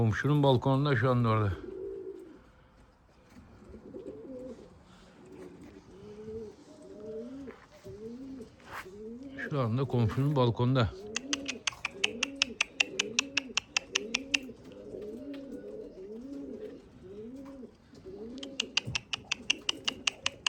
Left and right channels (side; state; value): both; identical; correlation 1.00